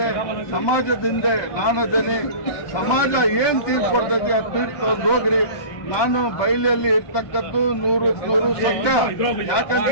ಸಮಾಜದಿಂದ ನಾನದೇನೆ. ಸಮಾಜ ಏನ್ ತೀರ್ಪು ಕೊಡ್ತೈತಿ ಅದು ತೀರ್ಪು ತಗೊಂಡು ಹೋಗ್ರಿ. ನಾನು ಬಯಲಲ್ಲಿ ಇರ್ತಕ್ಕದ್ದು 100% ಸತ್ಯ. ಯಾಕಂತ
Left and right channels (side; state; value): right; late; 1.2 ms